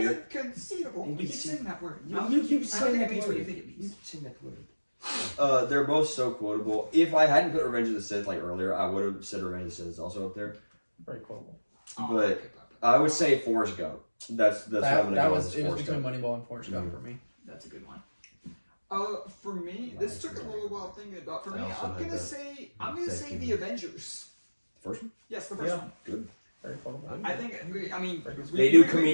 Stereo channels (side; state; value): both; inverted; correlation -1.00